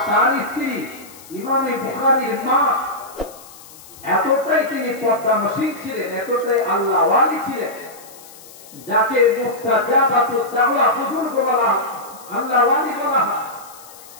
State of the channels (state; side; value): noise; left; hiss, 20 dB below the sound